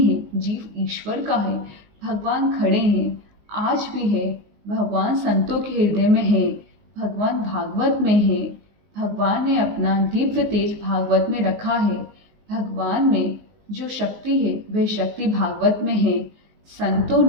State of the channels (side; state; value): left; late; 19 ms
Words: है, जीव ईश्वर का है। भगवान खड़े हैं, आज भी है। भगवान संतों के हृदय में है। भगवान भागवत में है। भगवान ने अपना दिव्य तेज भागवत में रखा है। भगवान में जो शक्ति है वह शक्ति भागवत में है। संतों